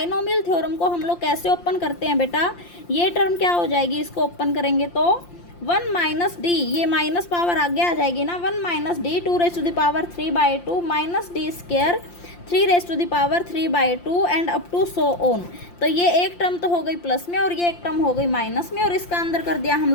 थ्योरम को हम लोग कैसे ओपन करते हैं बेटा, ये टर्म क्या हो जाएगी, इसको ओपन करेंगे तो 1 माइनस डी, ये माइनस पावर आगे आ जाएगी ना, 1 minus d 2 raise to the power 3/2 minus d square 3 raise to the power 3/2 and up to so on. तो ये एक टर्म तो हो गई प्लस में और ये एक टर्म हो गई माइनस में, और इसका अंदर कर दिया हम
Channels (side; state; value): right; late; 5.7 ms